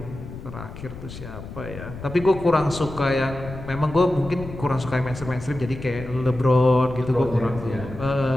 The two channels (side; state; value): left; noise; rumble, 12 dB below the sound